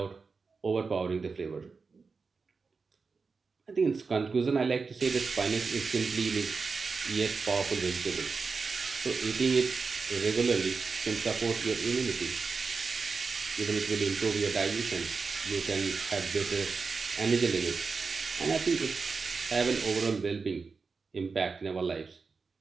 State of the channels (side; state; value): left; quieter; 4.7 dB